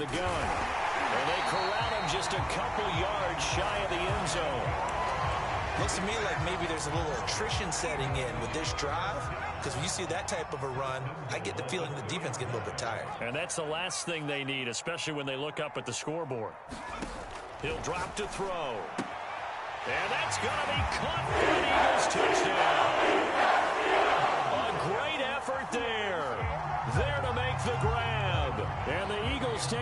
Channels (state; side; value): identical; both; correlation 1.00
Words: gun. And they corral him just a couple yards shy of the end zone. Looks to me like maybe there's a little attrition setting in with this drive. Because when you see that type of a run, I get the feeling the defense getting a little bit tired. And that's the last thing they need, especially when they look up at the scoreboard. He'll drop to throw. And that's going to be caught for an Eagles touchdown. A great effort there. There to make the grab. And the Eagles Panthers